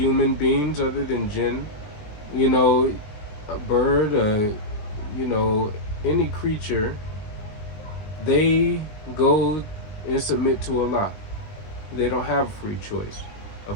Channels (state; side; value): late; right; 19 ms